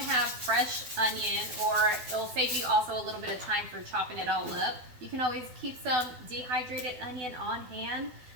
have fresh onion, or it'll save you also a little bit of time for chopping it all up, you can always keep some dehydrated onion on hand.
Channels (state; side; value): late; left; 12 ms